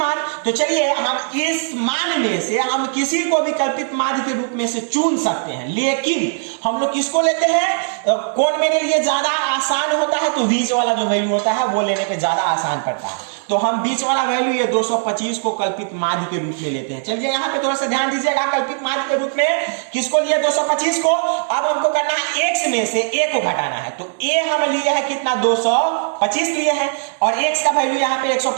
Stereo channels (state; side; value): silent; left; digital silence